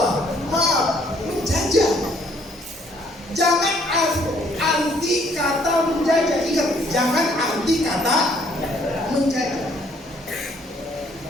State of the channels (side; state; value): both; normal; correlation 0.64